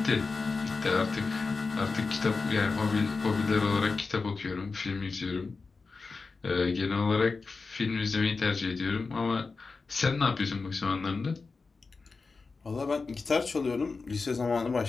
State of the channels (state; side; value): quieter; right; 4.3 dB